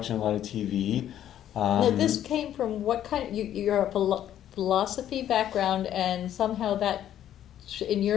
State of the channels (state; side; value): quieter; right; 11.1 dB